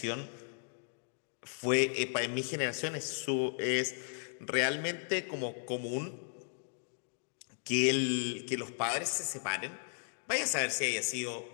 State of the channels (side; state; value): right; silent; digital silence